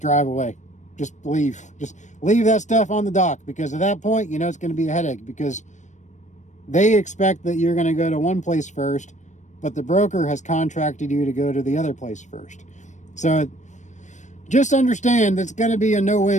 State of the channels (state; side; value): late; right; 0.35 ms